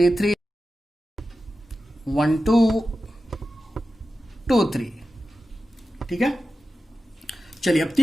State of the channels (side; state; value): both; normal; correlation 0.92